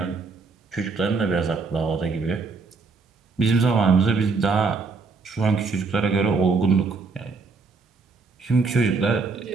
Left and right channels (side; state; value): left; quieter; 4.4 dB